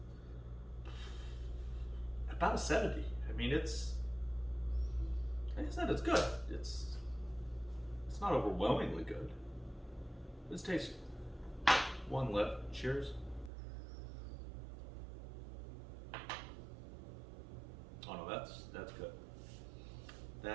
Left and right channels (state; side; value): drops out; left; at 13.5 s